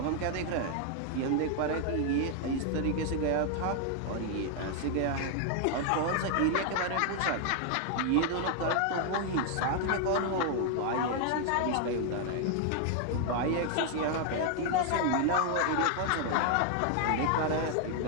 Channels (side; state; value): both; different; correlation 0.00